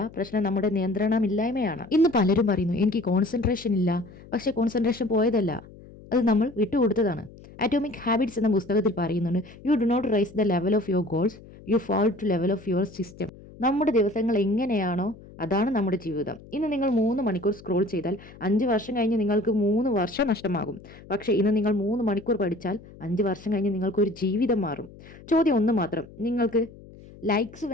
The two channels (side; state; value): left; noise; hum, 20 dB below the sound